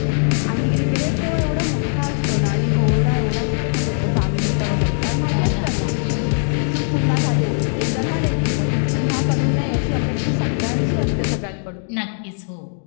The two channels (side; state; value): right; silent; digital silence